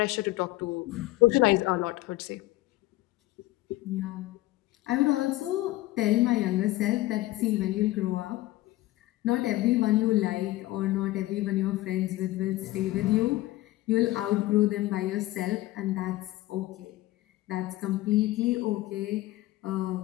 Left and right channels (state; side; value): quieter; right; 17.5 dB